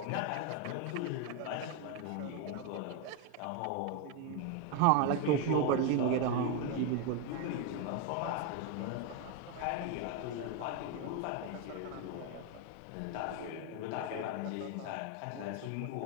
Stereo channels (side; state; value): both; different; correlation 0.01